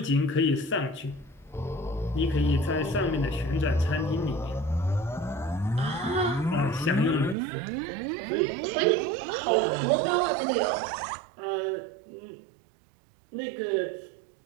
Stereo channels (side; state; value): left; drops out; at 7.4 s